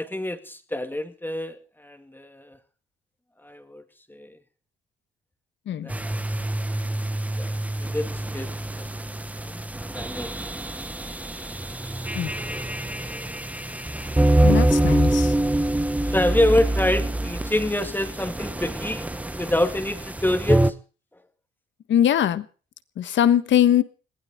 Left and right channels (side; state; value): both; normal; correlation 0.75